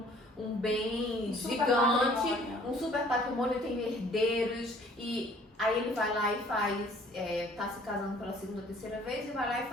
um bem super gigante, patrimônio. um super patrimônio, tem herdeiros, e aí ele vai lá e faz, tá se casando pela segunda ou terceira vez, e vai lá e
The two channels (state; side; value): normal; both; correlation 0.56